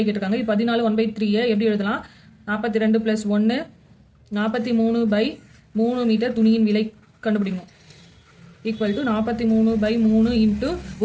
கேட்டிருக்காங்க. 14 1/3 எப்படி எழுதலாம்? 42 + 1 43/3 மீட்டர் துணியின் விலை கண்டுபிடிக்கணும். ஈக்குவல் டு 43/3 இன்ட்டு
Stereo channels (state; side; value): identical; both; correlation 1.00